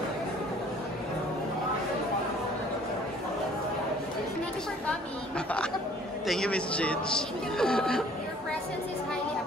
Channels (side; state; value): both; normal; correlation 0.55